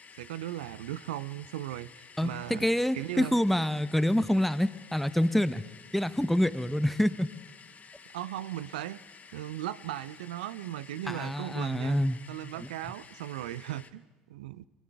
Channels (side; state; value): both; normal; correlation 0.85